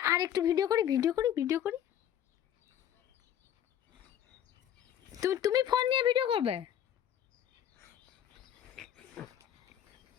আর একটু ভিডিও করি, ভিডিও করি, ভিডিও করি। তুমি ফোন নিয়ে ভিডিও করবে?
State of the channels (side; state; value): right; quieter; 10.2 dB